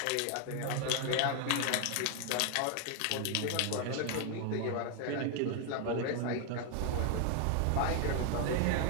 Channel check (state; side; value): different; both; correlation 0.00